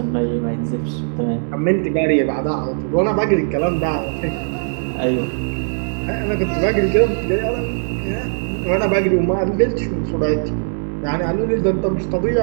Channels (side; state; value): left; silent; digital silence